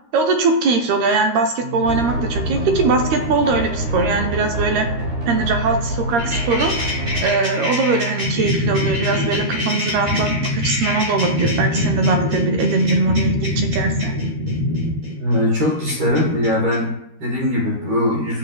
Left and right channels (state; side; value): late; left; 13 ms